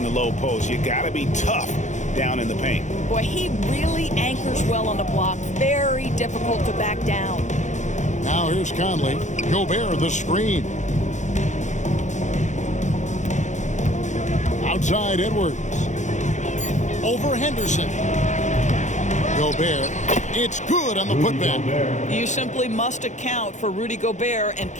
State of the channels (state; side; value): late; right; 0.35 ms